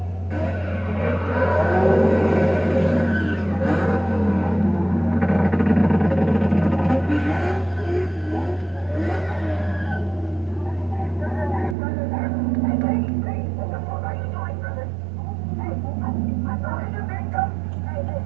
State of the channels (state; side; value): drops out; left; at 11.8 s